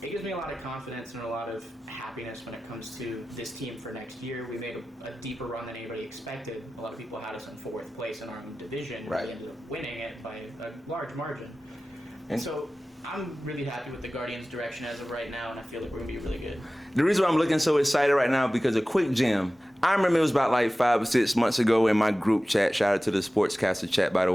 It gives me a lot of confidence and a lot of happiness when it comes to this team for next year. We made a deeper run than anybody expected. A lot of people had us in 4th place in our own division. Right. We ended up winning it by a large margin. And so I'm really happy with the Guardians' direction as of right now, and I feel like we're going to be really good. The reason why I'm looking so excited right now, because a quick gem. I remember it was about like 5 or 6 months ago in my group chat. Shout out to the Sportscaster chat, by the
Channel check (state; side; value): normal; both; correlation 0.96